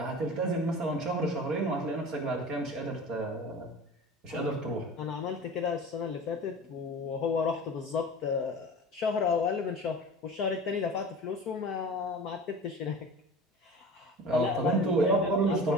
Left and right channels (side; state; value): both; normal; correlation 0.37